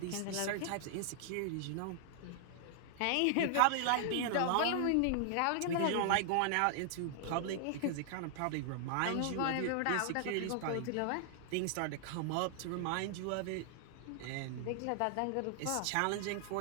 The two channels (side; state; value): both; different; correlation -0.01